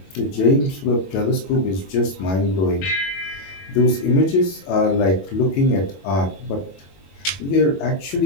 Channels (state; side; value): late; right; 21 ms